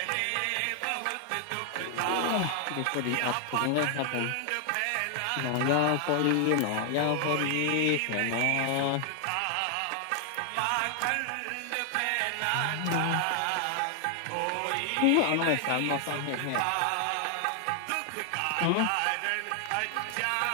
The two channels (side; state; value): both; different; correlation 0.00